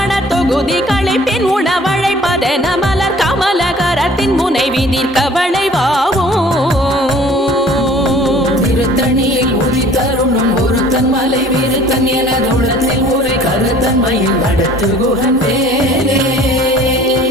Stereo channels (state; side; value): normal; both; correlation 0.51